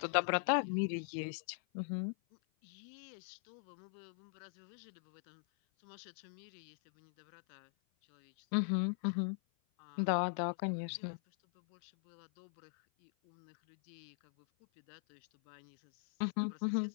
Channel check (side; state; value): right; silent; 51 dB below the other